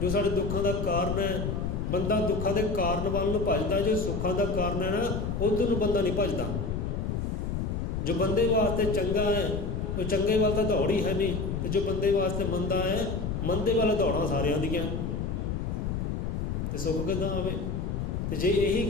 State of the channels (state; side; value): noise; left; rumble, 2 dB below the sound